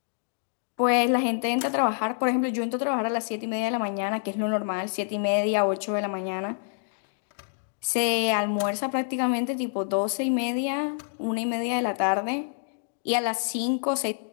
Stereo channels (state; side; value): silent; right; digital silence